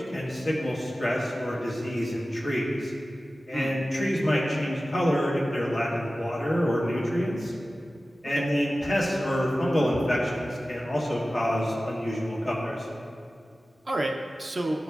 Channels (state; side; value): normal; both; correlation 0.96